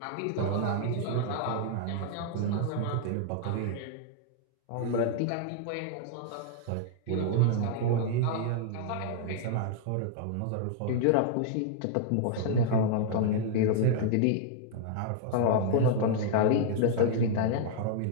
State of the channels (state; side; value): different; both; correlation -0.01